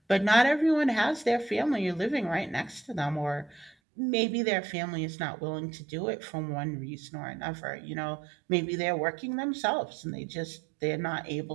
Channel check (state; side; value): drops out; left; at 3.8 s